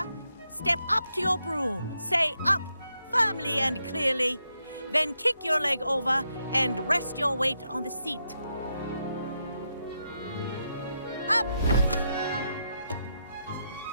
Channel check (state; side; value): inverted; both; correlation -0.82